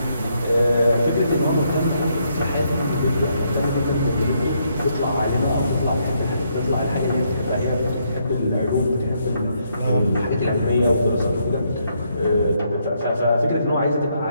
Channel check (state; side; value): inverted; both; correlation -0.74